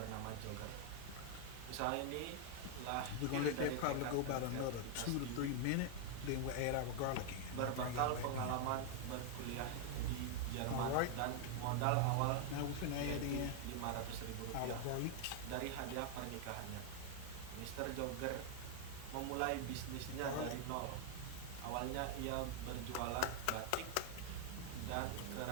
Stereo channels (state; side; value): different; both; correlation 0.00